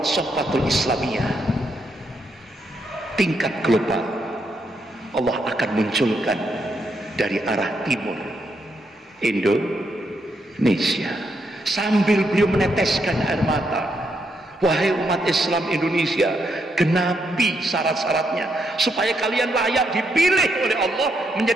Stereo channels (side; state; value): both; normal; correlation 0.79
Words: Sofatul Islamiyah tingkat global. Allah akan munculkan dari arah timur Indonesia, sambil beliau meneteskan air mata. Wahai umat Islam Indonesia, genapi syarat-syaratnya supaya kalian layak dipilih oleh Allah